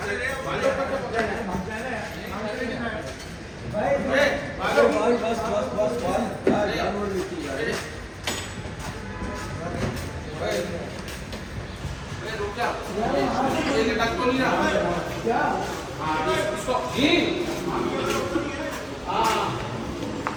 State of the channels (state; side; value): identical; both; correlation 1.00